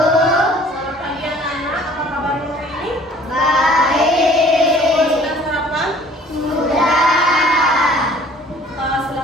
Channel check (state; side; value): normal; both; correlation 0.53